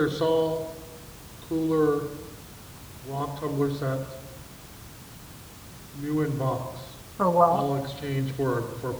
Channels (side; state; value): both; identical; correlation 1.00